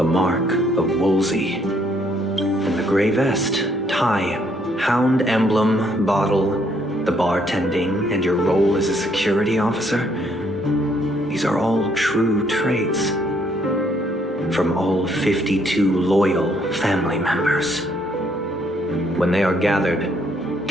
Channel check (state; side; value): normal; both; correlation 0.69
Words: mark of Wolsey. And the gray vest, tie, hound emblem, bottle, the bartending, and your role as a security officer. These are all true traits. From all 52 loyal family members. When they are gathered,